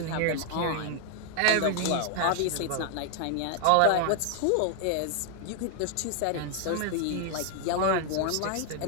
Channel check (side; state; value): both; different; correlation 0.00